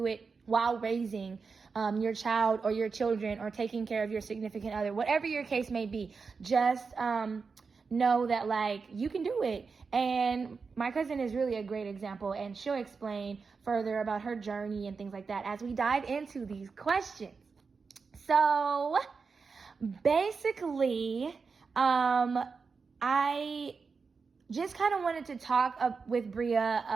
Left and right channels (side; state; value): left; quieter; 5.0 dB